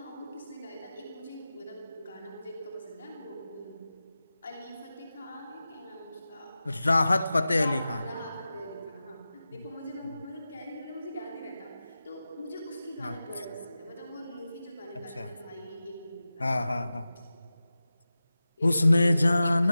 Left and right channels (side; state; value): both; inverted; correlation -0.94